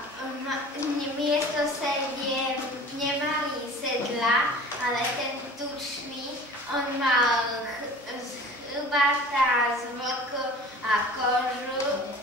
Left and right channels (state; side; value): normal; both; correlation 0.42